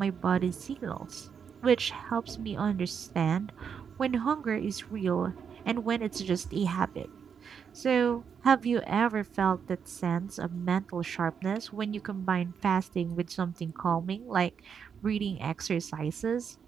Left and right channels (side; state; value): left; quieter; 7.0 dB